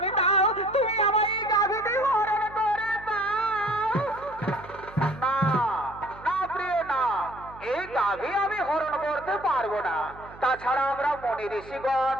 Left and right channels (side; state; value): right; noise; hum, 19 dB below the sound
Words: দাও, তুমি আমার এই গাভীটি হরণ করে দাও। না না প্রিয় না, এই গাভী আমি হরণ করতে পারবো না। তাছাড়া আমরা মনি ঋষিগণ